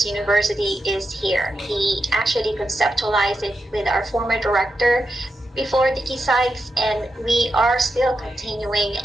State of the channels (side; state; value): both; normal; correlation 0.87